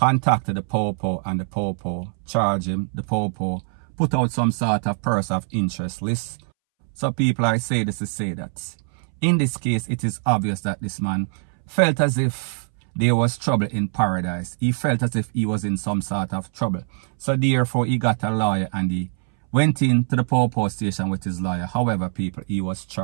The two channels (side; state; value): left; silent; 63 dB below the other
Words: the Popo, and the Popo charged him. The Popo put out some sort of person of interest list. So people, I say this to say that in this case, it is obvious that this man felt as if there was trouble in paradise. He felt as if he was in some sort of trouble. So therefore, he got a lawyer and he went into the Popo station with his lawyer. However, people, he was